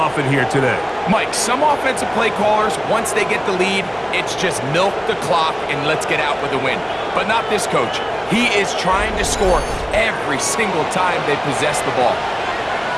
here today. Mike, some offensive play callers, once they get the lead, it's just milk the clock and let's get out with a win. But not this coach. He is trying to score every single time they possess the ball.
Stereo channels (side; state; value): both; identical; correlation 1.00